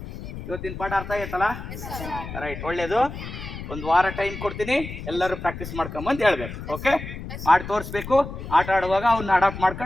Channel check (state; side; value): noise; left; rumble, 9 dB below the sound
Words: ಇವತ್ತಿನ ಪಾಠ ಅರ್ಥ ಆಯ್ತಲ್ಲ? ರೈಟ್, ಒಳ್ಳೇದು. ಒಂದು ವಾರ ಟೈಮ್ ಕೊಡ್ತೀನಿ, ಎಲ್ಲರೂ ಪ್ರಾಕ್ಟೀಸ್ ಮಾಡ್ಕೊಂಬಂದು ಹೇಳ್ಬೇಕು. ಓಕೆ, ಮಾಡಿ ತೋರಿಸ್ಬೇಕು. ಆಟ ಆಡುವಾಗ ಅವನ್ನ ಅಡಾಪ್ಟ್